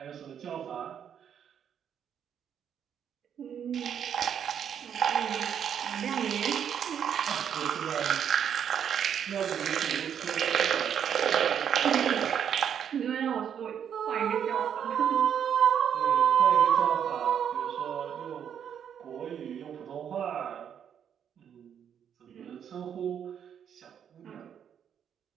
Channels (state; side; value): quieter; left; 8.5 dB